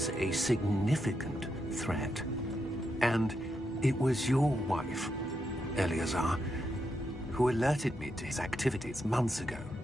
a significant threat. And it was your wife, Eleazar, who alerted me to his activities months ago.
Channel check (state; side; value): normal; both; correlation 0.83